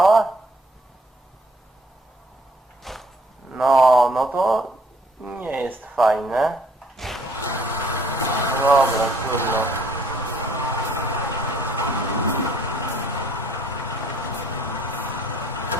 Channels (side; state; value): both; normal; correlation 0.61